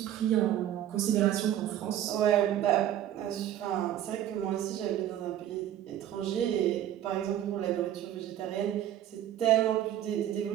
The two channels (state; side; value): quieter; left; 11.6 dB